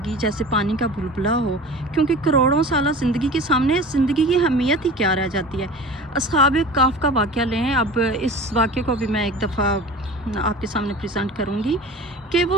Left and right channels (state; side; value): normal; both; correlation 0.38